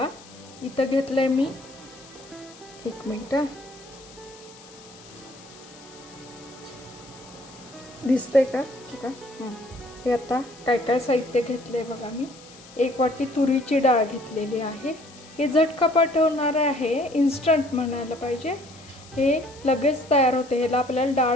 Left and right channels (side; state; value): left; noise; hiss, 21 dB below the sound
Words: इथं घेतलंय मी, एक मिनिट, दिसतंय का बघा। हे आता काय काय साहित्य घेतलंय बघा मी। एक वाटी तुरीची डाळ घेतलेली आहे। हे झटपट होणारे आहे, इन्स्टंट म्हणायला पाहिजे। हे लगेच तयार होते। ह्याला आपल्याला